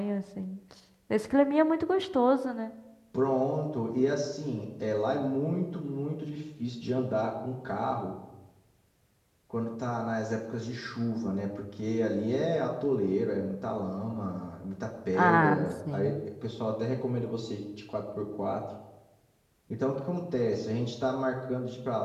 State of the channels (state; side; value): identical; both; correlation 1.00